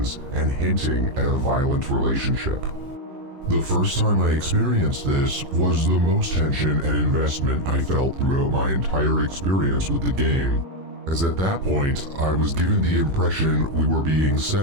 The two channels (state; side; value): late; left; 15 ms